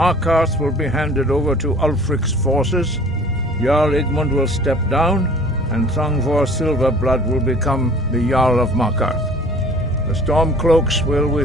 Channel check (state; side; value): normal; both; correlation 0.48